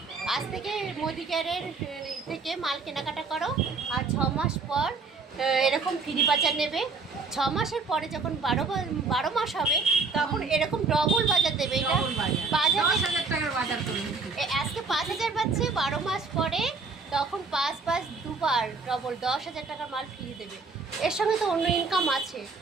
আজ থেকে মোদি কেয়ারের থেকে মাল কেনাকাটা করো, আর 6 মাস পর এরকম ফ্রি বাজার নেবে। 6 মাসের পরে যখন 12 মাস হবে তখন এরকম ডবল বাজার দেবে। এটা ডবল বাজার, 10,000 টাকার বাজার করুন। আজকে 5,000 পাচ্ছে, 12 মাস পরে তখন 5 দুবার ডবল 10,000 টাকার মাল ফ্রি দেবে। এর সঙ্গে তো অন্য ইনকাম আছে,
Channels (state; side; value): quieter; left; 4.3 dB